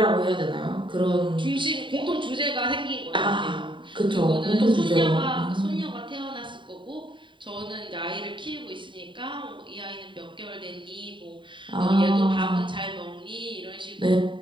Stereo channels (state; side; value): late; left; 0.23 ms